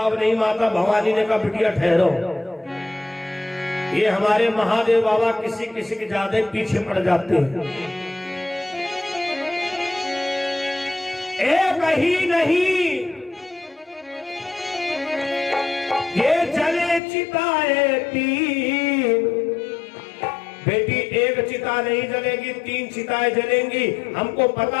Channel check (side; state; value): right; drops out; at 17.0 s